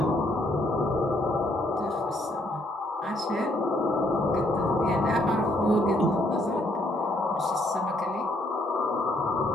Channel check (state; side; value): normal; both; correlation 0.70